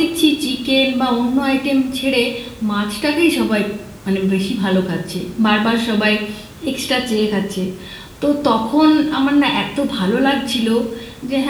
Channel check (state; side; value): identical; both; correlation 1.00